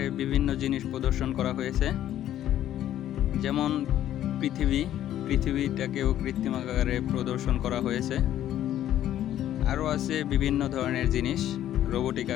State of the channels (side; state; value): right; quieter; 12.0 dB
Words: বিভিন্ন জিনিস প্রদর্শন করা হয়েছে, যেমন পৃথিবীটাকেও কৃত্রিম আকারে প্রদর্শন করা হয়েছে। আরও আছে বিভিন্ন ধরনের জিনিস রোবোটিক